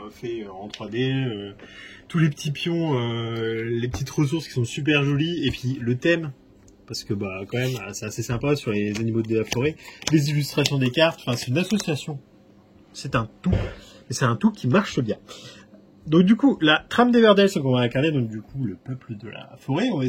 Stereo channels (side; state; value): both; identical; correlation 1.00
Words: fait en 3D, tous les petits pions, les petites ressources qui sont super jolies, et puis le thème, parce que quand même c'est assez sympa sur les animaux de la forêt, les illustrations des cartes, enfin c'est une association, c'est un tout, et c'est un tout qui marche bien. Donc du coup, la trame d'Everdell, c'est qu'on va incarner donc du coup le peuple de la forêt. On va